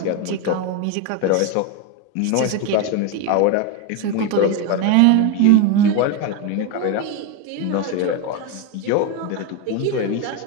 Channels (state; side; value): different; both; correlation 0.03